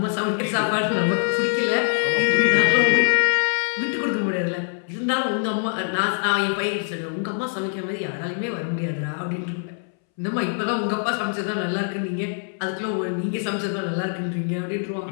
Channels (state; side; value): silent; right; 63 dB below the other